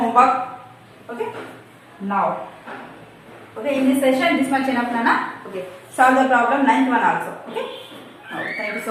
Okay. Now. Okay. In this session, this much enough, Nana. Okay. Solve the problem ninth one also. Okay. Now, thank you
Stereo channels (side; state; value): both; identical; correlation 1.00